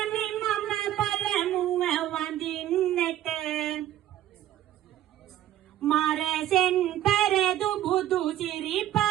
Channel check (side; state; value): left; quieter; 12.7 dB